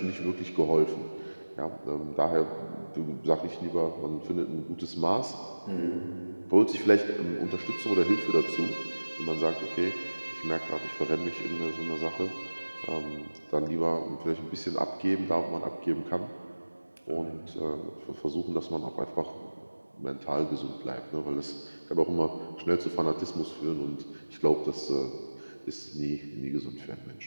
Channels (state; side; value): inverted; both; correlation -1.00